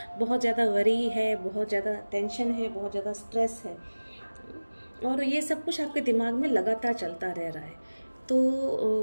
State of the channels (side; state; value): both; inverted; correlation -1.00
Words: बहुत ज़्यादा वरी है, बहुत ज़्यादा टेंशन है, बहुत ज़्यादा स्ट्रेस है, और ये सब कुछ आपके दिमाग में लगातार चलता रह रहा है।